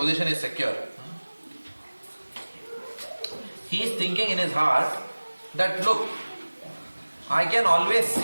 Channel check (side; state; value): both; inverted; correlation -1.00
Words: is secure. He is thinking in his heart that, look, I can always